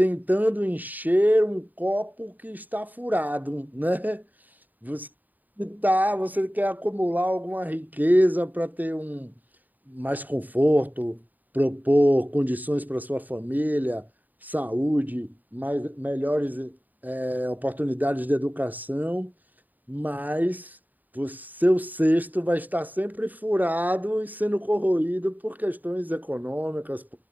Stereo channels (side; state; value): left; late; 0.085 ms